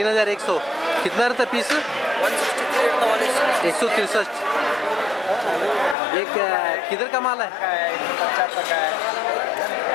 कितना रहता है पीस? 163। एक किधर का माल है?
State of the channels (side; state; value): right; drops out; at 6.0 s